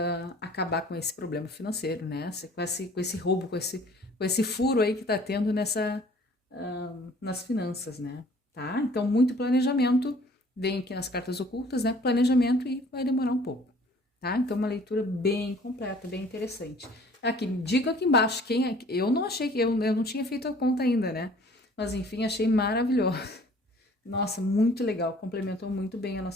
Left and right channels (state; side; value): normal; both; correlation 0.53